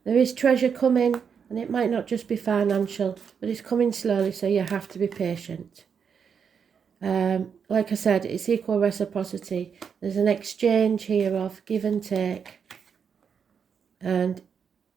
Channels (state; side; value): quieter; left; 6.8 dB